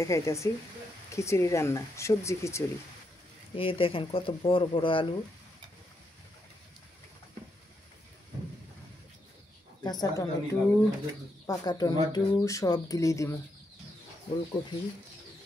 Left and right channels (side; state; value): both; normal; correlation 0.80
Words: খিচুড়ি রান্না, সবজি খিচুড়ি। এই দেখেন কত বড় বড় আলু, কাঁচা টমেটো, পাকা টমেটো সব দিলেই দিব। ওলকপি,